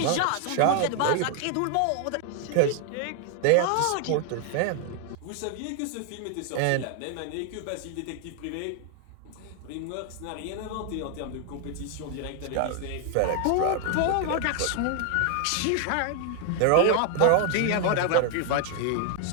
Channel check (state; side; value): different; both; correlation 0.00